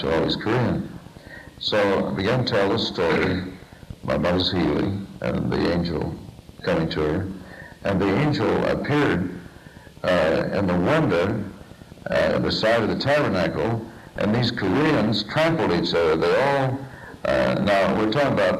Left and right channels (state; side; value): identical; both; correlation 1.00